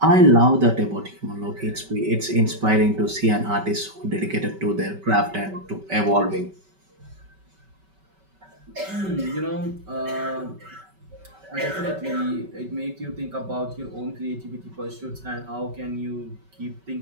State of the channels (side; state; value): left; late; 5.2 ms